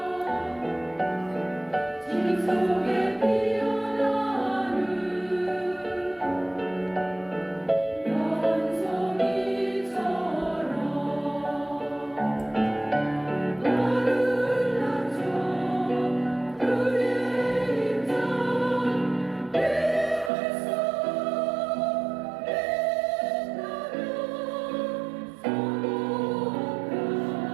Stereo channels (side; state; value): left; drops out; at 20.3 s